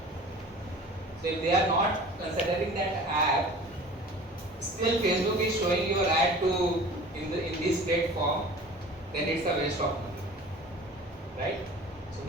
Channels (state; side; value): normal; both; correlation 0.43